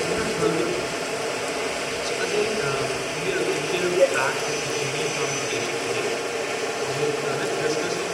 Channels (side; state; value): both; identical; correlation 1.00